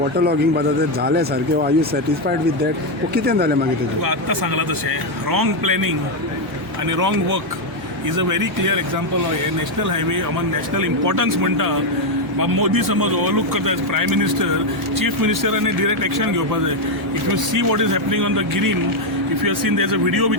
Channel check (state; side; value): normal; both; correlation 0.04